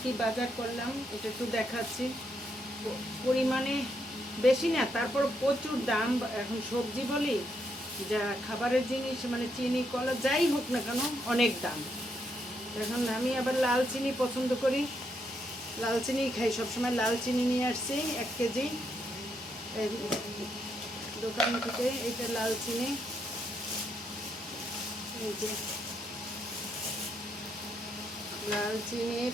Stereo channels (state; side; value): normal; both; correlation 0.78